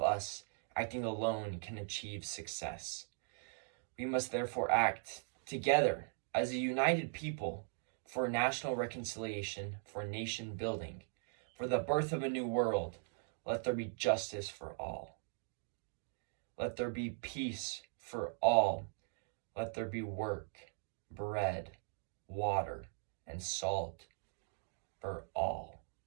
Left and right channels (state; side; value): silent; left; digital silence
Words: us acting alone can achieve success. We must therefore act together as a united people for national reconciliation, for nation building, for the birth of a new world. Let there be justice for all. Let there be peace for all. Let there be work, bread, water, and salt for all.